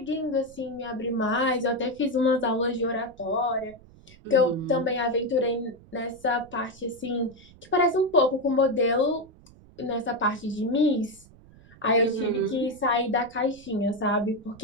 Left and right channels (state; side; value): noise; right; rumble, 24 dB below the sound